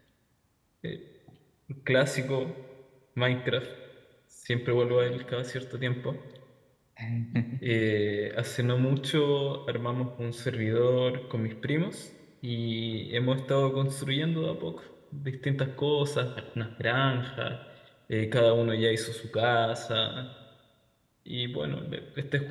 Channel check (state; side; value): identical; both; correlation 1.00